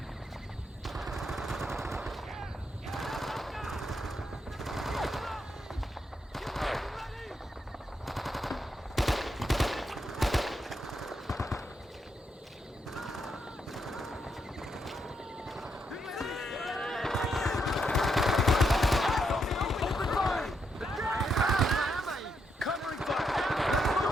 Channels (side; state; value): both; normal; correlation 0.80